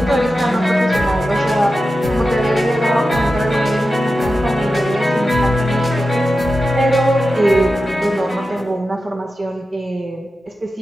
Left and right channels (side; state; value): both; normal; correlation 0.92